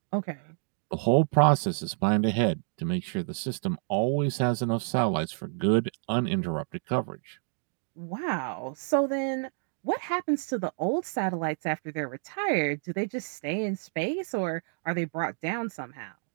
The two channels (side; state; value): left; silent; 59 dB below the other